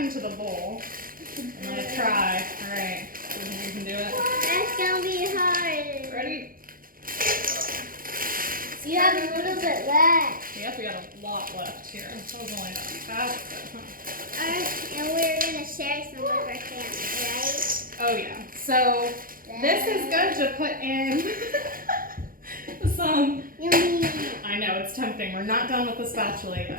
the bowl. I'm gonna try. All right, you can do it. That's gonna be hard. Ready? You have a little bit left. Yep, we got a lot left here. That was only about half of it, huh? And we're gonna share some with our family, right? Oh yeah. So this is good to put in some. Yummy. I know, it's tempting. We're not done with the spatula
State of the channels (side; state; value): left; late; 0.41 ms